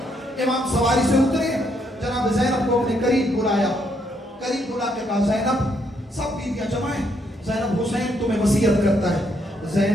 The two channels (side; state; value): both; normal; correlation 0.74